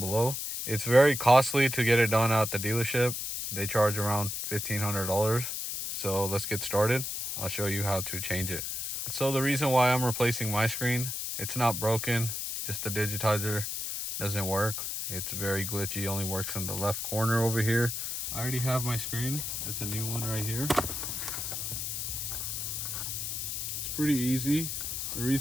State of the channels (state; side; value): noise; left; hiss, 4 dB below the sound